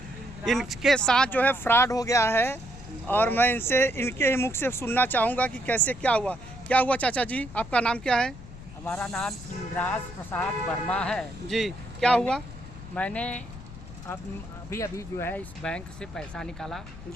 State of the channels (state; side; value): noise; left; rumble, 15 dB below the sound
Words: इनके साथ जो है फ्रॉड हो गया है। और मैं इनके ही मुख से सुनना चाहूँगा कि कैसे क्या हुआ चाचा जी। आपका नाम क्या है? हमारा नाम इंद्राज प्रसाद वर्मा है जी, क्या हुआ? मैंने अभी जो है इस बैंक से पैसा निकाला